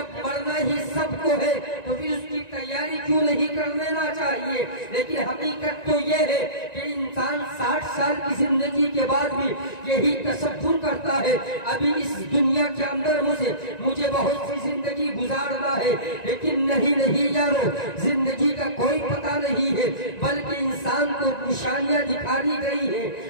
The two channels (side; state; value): right; late; 1.9 ms